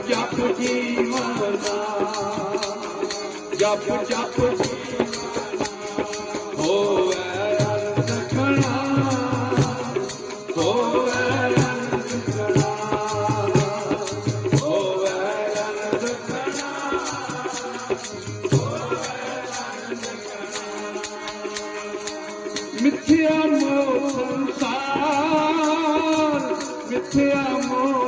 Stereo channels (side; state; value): both; identical; correlation 1.00